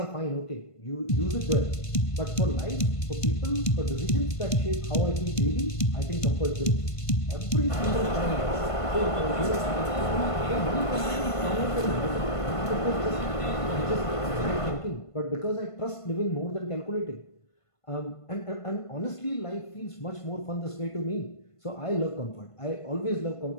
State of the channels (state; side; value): late; right; 1.5 ms